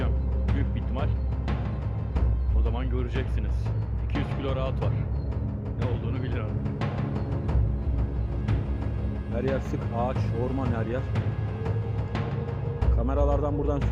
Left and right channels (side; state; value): both; identical; correlation 1.00